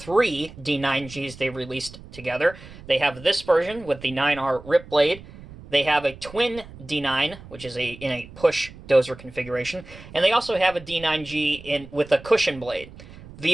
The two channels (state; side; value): noise; right; rumble, 18 dB below the sound